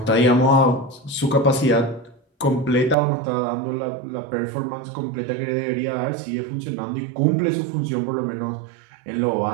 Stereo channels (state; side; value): drops out; left; at 3.0 s